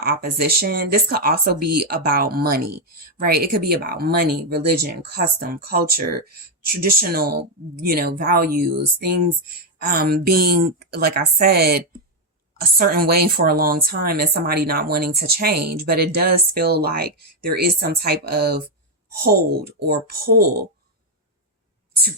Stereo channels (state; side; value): normal; both; correlation 0.03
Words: opposition. This could also be about money, right? It could be about money, religion, custom, culture, traditional, values, things being, like I said, a certain way for a long time and somebody not wanting to change. But it does feel like there is some type of hold or pull to